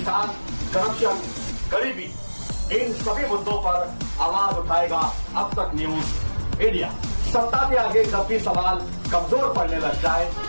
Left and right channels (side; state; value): both; inverted; correlation -1.00